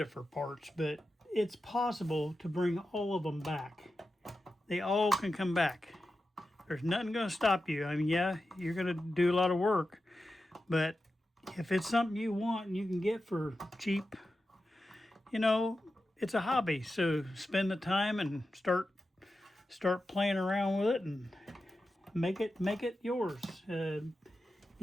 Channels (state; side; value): normal; both; correlation 0.91